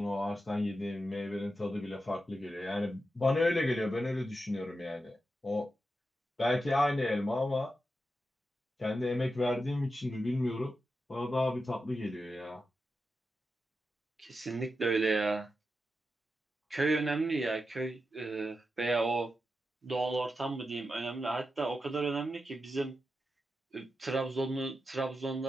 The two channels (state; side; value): normal; both; correlation 0.89